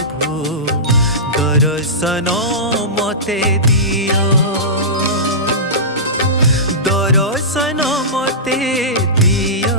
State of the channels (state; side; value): normal; both; correlation -0.18